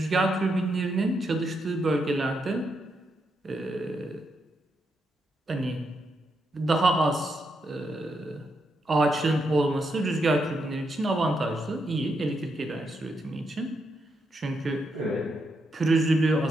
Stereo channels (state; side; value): normal; both; correlation 0.81